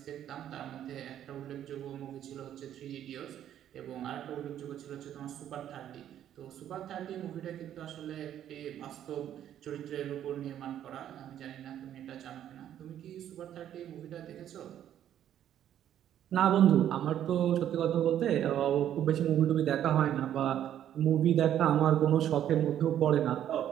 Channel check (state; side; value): quieter; left; 10.8 dB